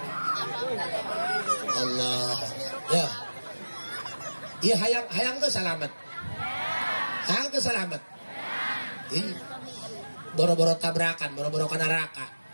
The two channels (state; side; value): inverted; both; correlation -1.00